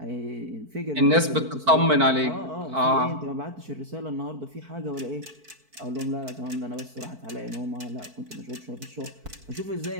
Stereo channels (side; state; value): left; late; 4.5 ms